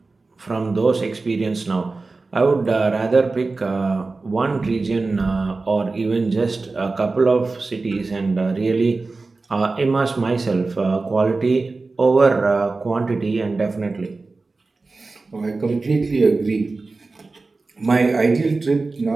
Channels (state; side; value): quieter; left; 3.7 dB